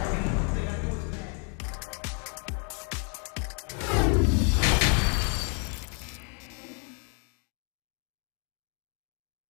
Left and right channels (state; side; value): quieter; right; 38.2 dB